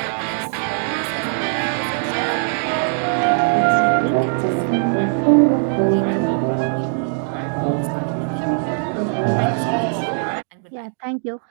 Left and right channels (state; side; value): silent; left; digital silence